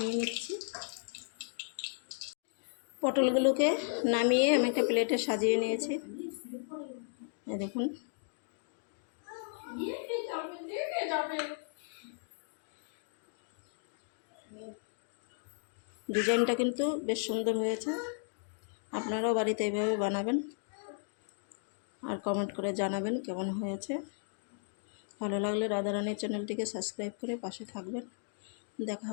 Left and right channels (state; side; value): silent; right; digital silence